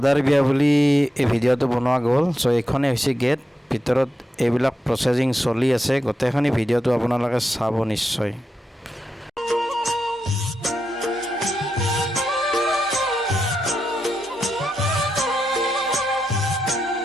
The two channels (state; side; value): normal; both; correlation 0.87